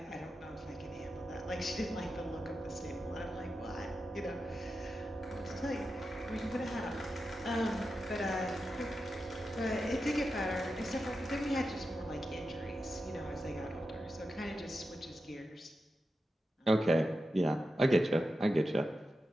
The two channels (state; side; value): normal; both; correlation 0.90